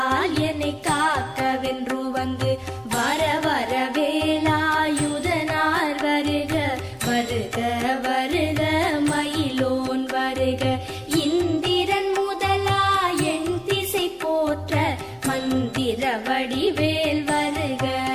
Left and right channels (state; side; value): identical; both; correlation 1.00